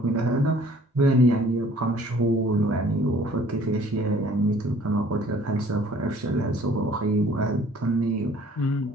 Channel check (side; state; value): both; normal; correlation 0.55